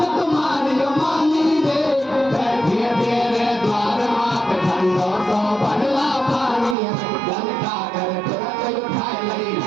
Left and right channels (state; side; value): drops out; left; at 6.8 s